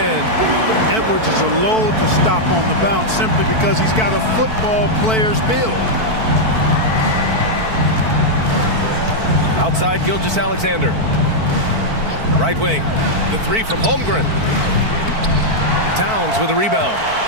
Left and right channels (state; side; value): late; left; 4.5 ms